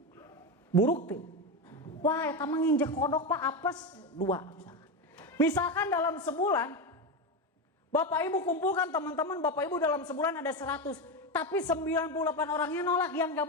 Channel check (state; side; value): normal; both; correlation 0.15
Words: Buruk tuh. Wah, eta mah nginjek kodok Pak, apes 2 misalkan dalam sebulan Bapak Ibu kumpulkan teman-teman Bapak Ibu dalam sebulan ada 100, tapi 98 orangnya nolak, yang